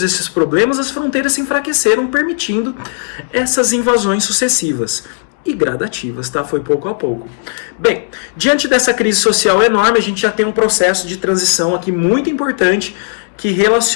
esses problemas, as fronteiras se enfraqueceram, permitindo essas invasões sucessivas e gradativas, tá? Foi pouco a pouco. Bem, diante dessa crise social enorme, a gente já tem um processo de transição aqui muito importante que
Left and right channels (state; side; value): silent; right; digital silence